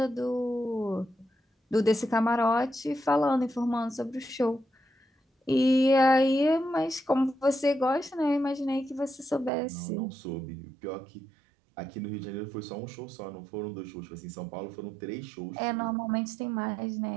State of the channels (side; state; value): left; drops out; at 9.5 s